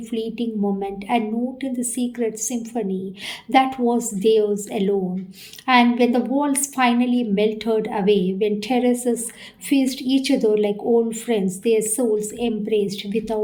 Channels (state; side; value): identical; both; correlation 1.00